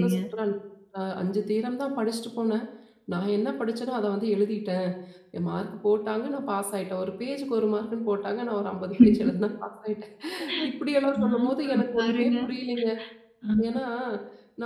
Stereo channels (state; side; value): identical; both; correlation 1.00